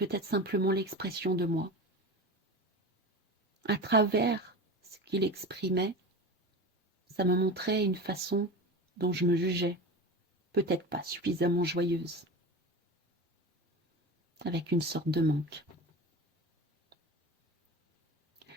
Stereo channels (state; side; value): normal; both; correlation 0.29